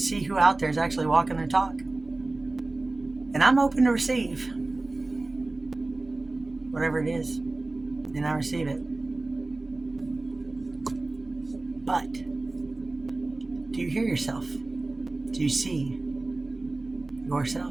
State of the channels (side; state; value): left; quieter; 3.1 dB